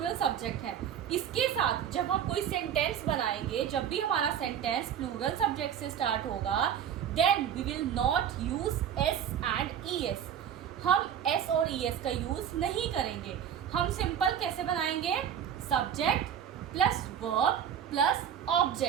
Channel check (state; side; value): quieter; left; 9.1 dB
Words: सब्जेक्ट है। इसके साथ जब हम कोई सेंटेंस बनाएंगे, जब भी हमारा सेंटेंस प्लूरल सब्जेक्ट से स्टार्ट होगा, then we will not use S and ES। हम S और ES का यूज नहीं करेंगे। हम सिंपल कैसे बनाएंगे, subject plus verb plus